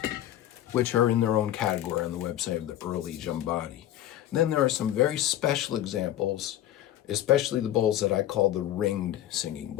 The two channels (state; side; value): quieter; right; 12.7 dB